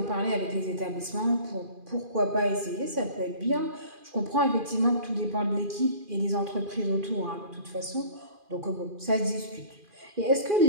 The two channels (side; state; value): left; late; 2.4 ms